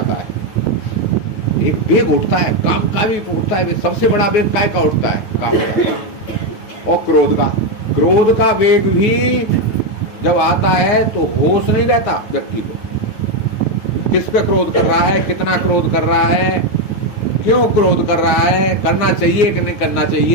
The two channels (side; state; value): right; late; 9.2 ms